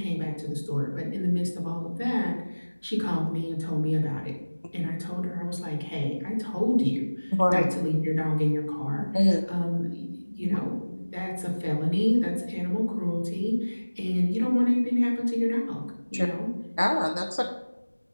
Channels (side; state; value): both; inverted; correlation -1.00